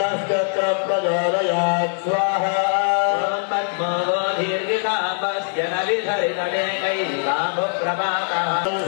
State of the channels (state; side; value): silent; right; digital silence